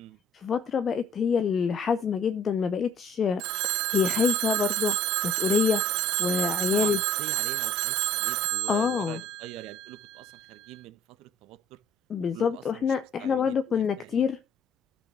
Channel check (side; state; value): both; normal; correlation 0.53